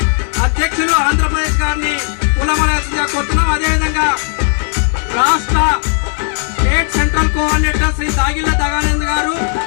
అధ్యక్షులు ఆంధ్రప్రదేశ్ గారిని పూలమాలగా కొడుతున్నాం. అదేవిధంగా రాష్ట్ర స్టేట్ సెంట్రల్ కోఆర్డినేటర్ శ్రీ దాగిల్ల దగానంద్ గారు,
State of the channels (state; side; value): silent; right; 61 dB below the other